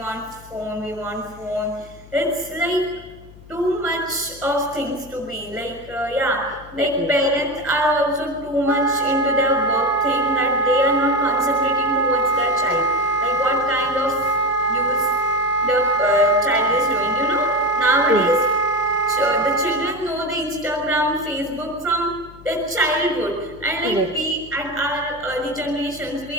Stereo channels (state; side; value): noise; left; hum, 20 dB below the sound